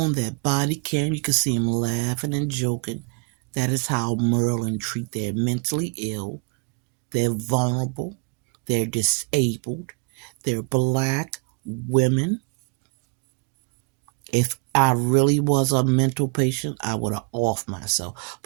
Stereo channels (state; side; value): quieter; left; 33.7 dB